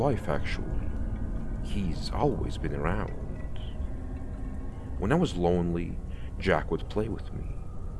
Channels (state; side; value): identical; both; correlation 1.00